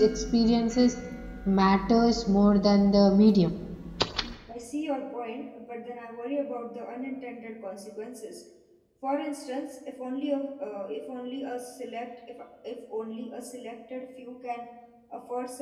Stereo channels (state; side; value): identical; both; correlation 1.00